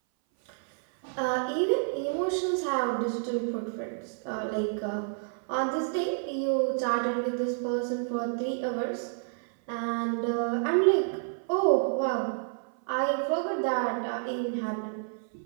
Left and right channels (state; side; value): silent; left; 58 dB below the other